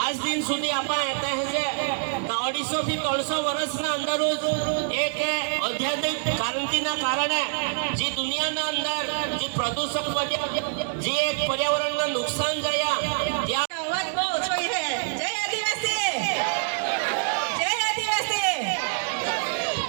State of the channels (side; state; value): left; silent; digital silence